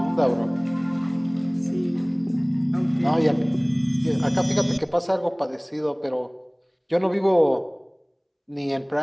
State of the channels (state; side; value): identical; both; correlation 1.00